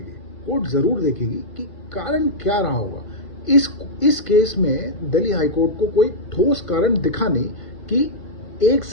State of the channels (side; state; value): right; late; 1.5 ms